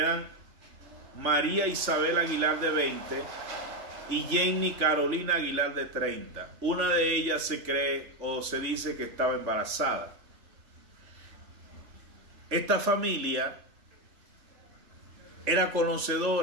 María Isabel Aguilar, de 20, y Jenny Carolina Aguilar, de 30. Una de ellas se cree o se dice que estaba embarazada. Esta familia era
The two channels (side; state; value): left; late; 3.4 ms